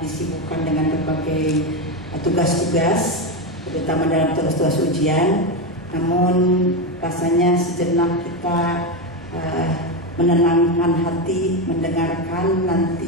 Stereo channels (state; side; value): normal; both; correlation 0.12